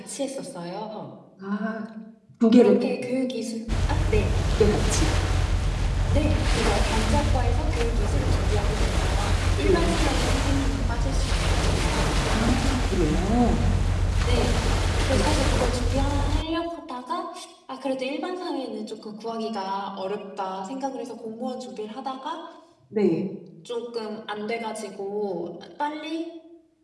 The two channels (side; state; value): both; identical; correlation 1.00